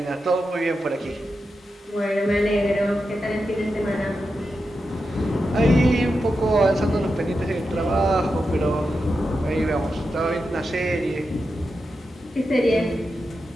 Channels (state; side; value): normal; both; correlation 0.89